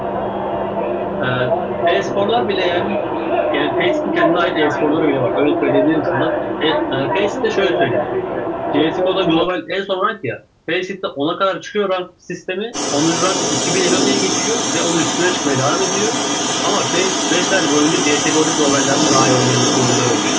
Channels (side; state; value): both; identical; correlation 1.00